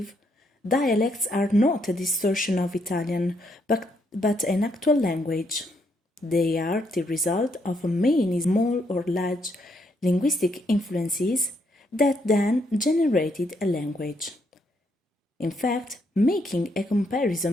dialects are not a distortion of Italian, but an actual language. They are the result of many small or large linguistic influences that then generated a language. In fact, making a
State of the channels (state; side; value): normal; both; correlation 0.75